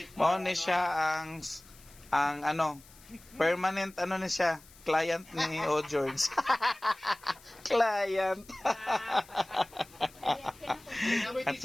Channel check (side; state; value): left; noise; hiss, 24 dB below the sound